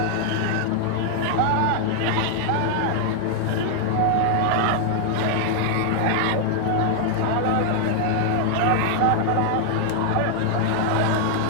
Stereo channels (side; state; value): both; different; correlation 0.00